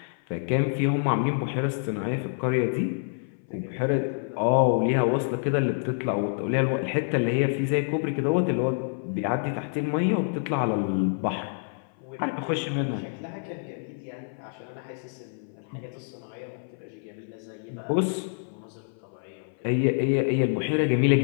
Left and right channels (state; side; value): silent; right; 57 dB below the other